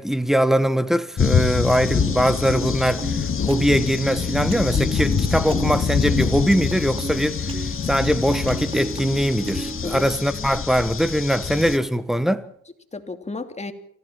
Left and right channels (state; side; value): normal; both; correlation 0.85